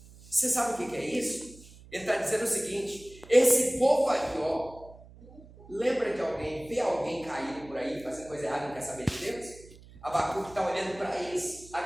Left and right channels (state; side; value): noise; right; hum, 21 dB below the sound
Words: Você sabe o que é isso? Ele está dizendo o seguinte: esse povo aqui, ó, lembra de alguém, vê alguém caído por aí, fazendo coisa errada e não quer saber de Deus? Abacuque está olhando para eles, a